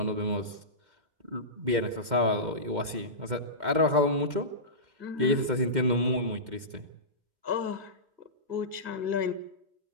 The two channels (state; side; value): late; left; 2.1 ms